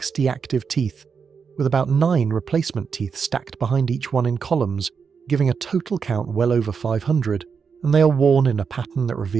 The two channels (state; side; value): quieter; left; 6.0 dB